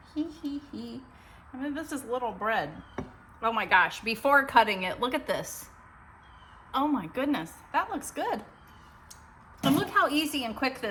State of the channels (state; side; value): identical; both; correlation 1.00